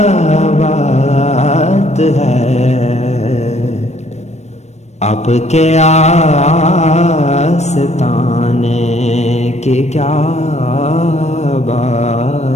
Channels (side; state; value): right; late; 0.32 ms